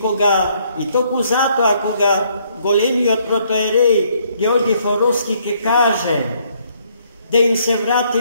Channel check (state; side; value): inverted; both; correlation -0.68